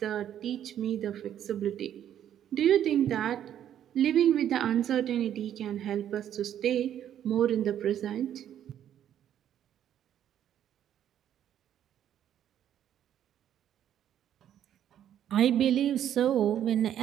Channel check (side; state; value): left; quieter; 10.4 dB